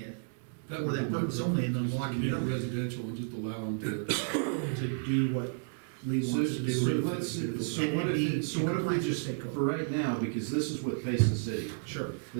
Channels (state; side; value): silent; left; digital silence